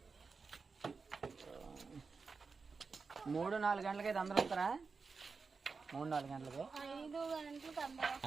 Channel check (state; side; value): quieter; left; 4.7 dB